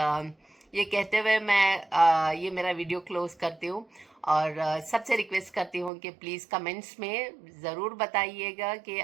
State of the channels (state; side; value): drops out; left; at 5.9 s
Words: ये कहते हुए मैं ये मेरा वीडियो क्लोज करती हूँ और सबसे रिक्वेस्ट करती हूँ कि प्लीज़ कमेंट्स में ज़रूर बताइएगा कि